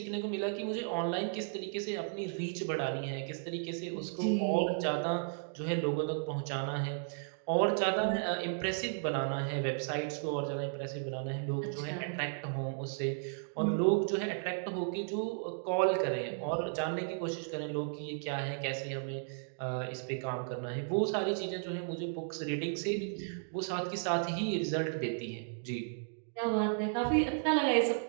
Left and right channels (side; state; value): left; silent; digital silence